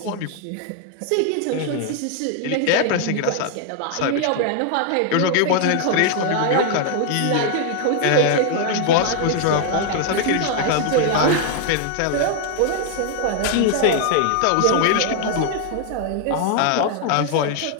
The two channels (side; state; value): both; different; correlation 0.00